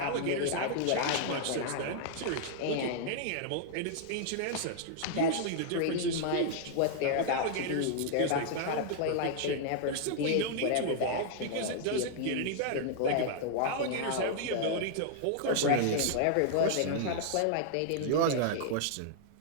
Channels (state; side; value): different; both; correlation -0.01